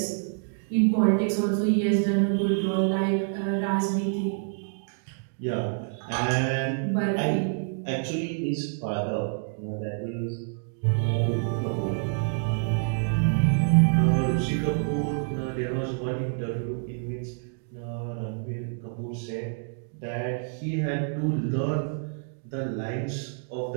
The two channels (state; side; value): silent; left; digital silence